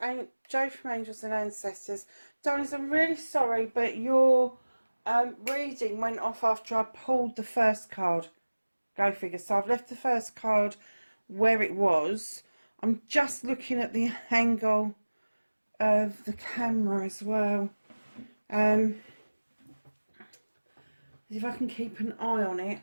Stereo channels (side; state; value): both; inverted; correlation -1.00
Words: Jo from Angels and Ancestors. Darlings, I'm really sorry, but your reading went off after I pulled the first card. Go figure. So I've left the first card where it was. I'm just looking at the angle of the camera as well. If I can keep an eye on it,